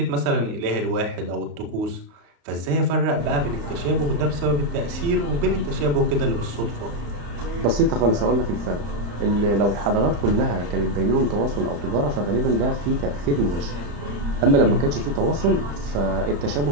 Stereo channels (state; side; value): late; left; 35 ms